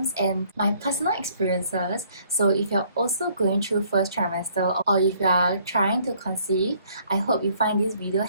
and my personal experiences. So if you're also going through first trimester or if you are trying to conceive, I hope you find this video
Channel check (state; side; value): inverted; both; correlation -0.63